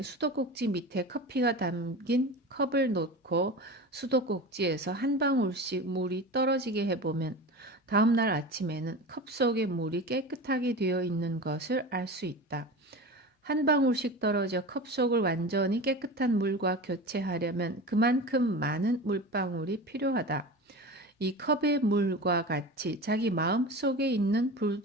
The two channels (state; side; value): normal; both; correlation 0.30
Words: 수도꼭지 밑에 커피가 담긴 컵을 놓고 수도꼭지에서 한 방울씩 물이 떨어지게 해보면 다음날 아침에는 컵 속의 물이 깨끗하게 되어 있는 것을 알 수 있다. 한 방울씩 떨어져 컵 속을 완전히 깨끗한 물과 교체하려면 그만큼 많은 물방울이 필요하다. 이 컵의 물과 같이 자기 마음 속에 있는